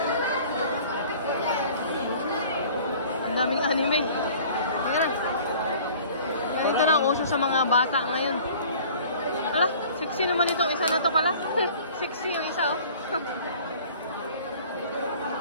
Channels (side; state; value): both; inverted; correlation -0.48